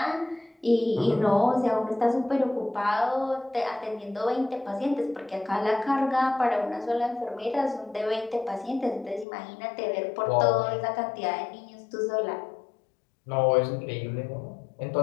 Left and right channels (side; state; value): right; drops out; at 9.2 s